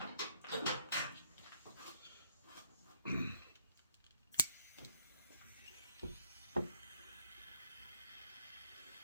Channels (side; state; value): both; inverted; correlation -0.67